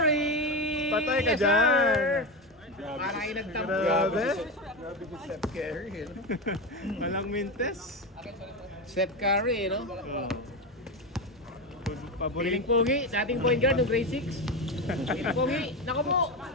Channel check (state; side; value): normal; both; correlation 0.17